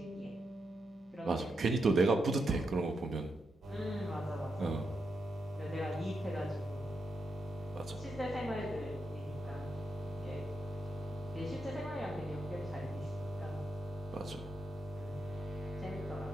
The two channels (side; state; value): both; normal; correlation 0.84